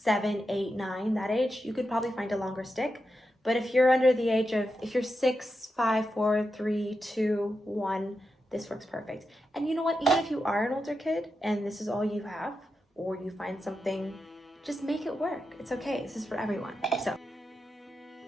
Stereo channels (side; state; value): both; normal; correlation 0.88